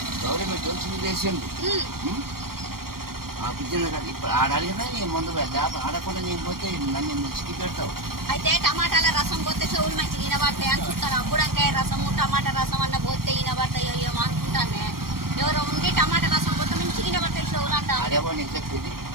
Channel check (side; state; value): left; late; 0.93 ms